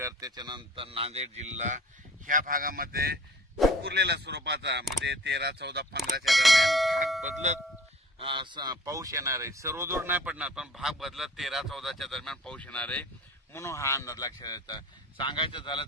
त्याच्यानंतर नांदेड जिल्हा ह्या भागामध्ये विखुरलेल्या स्वरूपाचा म्हणजे 13, 14, 15च्या दरम्यान भाग बदलत पाऊस येणार आहे। सर्वदूर नाही पडणार पण भाग बदलत 13, 14च्या दरम्यान पाऊस येणार आहे म्हणून हा अंदाज लक्षात येतो। सांगायचं झालं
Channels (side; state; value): both; normal; correlation 0.47